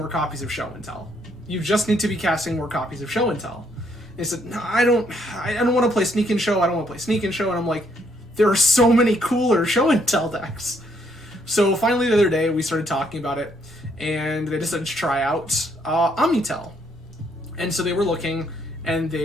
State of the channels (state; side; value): normal; both; correlation 0.71